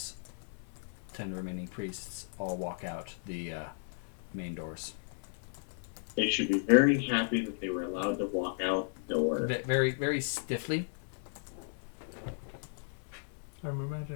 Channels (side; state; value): right; silent; 55 dB below the other